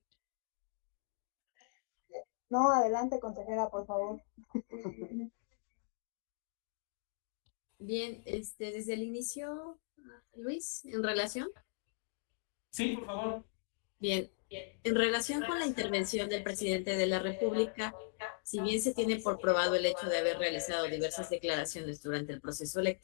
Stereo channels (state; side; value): silent; right; digital silence